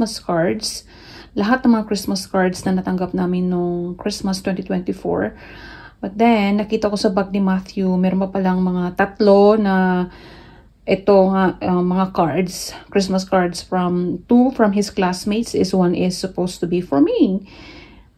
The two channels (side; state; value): both; identical; correlation 1.00